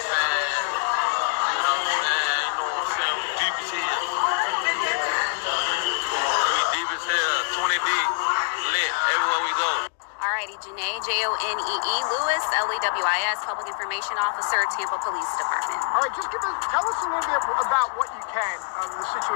We deep as hell. We deep as hell. 20 deep. Lit everywhere we go. Alrighty, Janae, Jonee Lewis, LEWIS, Public Information Officer, Tampa Police Department. All right, tell us a little bit about what you can of the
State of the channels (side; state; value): right; silent; digital silence